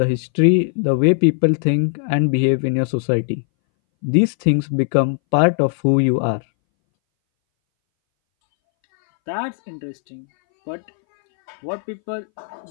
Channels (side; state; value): right; silent; 63 dB below the other